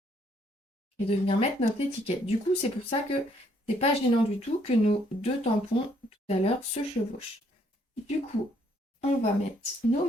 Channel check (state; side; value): normal; both; correlation 0.68